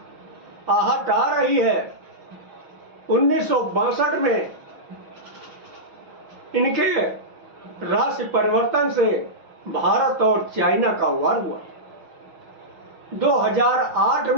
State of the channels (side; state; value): left; late; 6.0 ms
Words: आहट आ रही है। 1962 में इनके राशि परिवर्तन से भारत और चाइना का वार हुआ। 2008